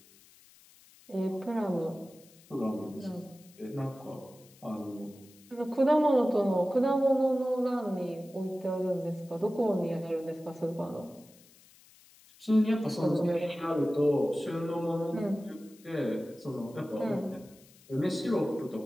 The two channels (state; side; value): noise; left; hiss, 26 dB below the sound